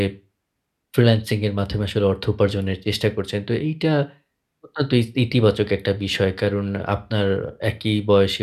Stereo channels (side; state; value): both; identical; correlation 1.00